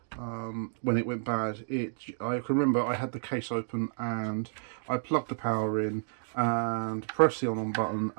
when it went bad, I can remember I had the case open and I plugged the power in and pressed the on button,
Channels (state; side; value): silent; left; digital silence